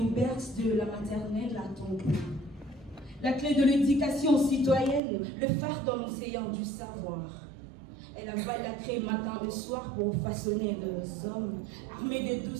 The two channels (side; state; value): left; drops out; at 5.0 s